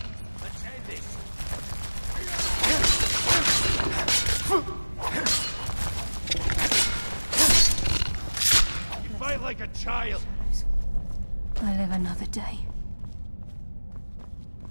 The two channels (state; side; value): inverted; both; correlation -1.00